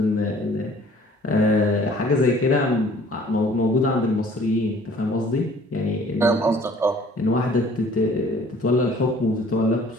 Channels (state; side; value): normal; both; correlation 0.53